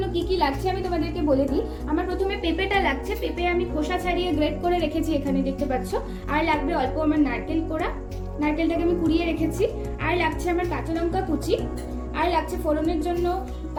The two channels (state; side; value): identical; both; correlation 1.00